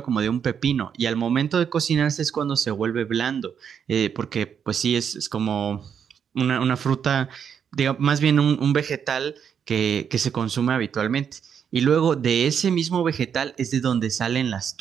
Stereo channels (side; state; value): left; quieter; 7.6 dB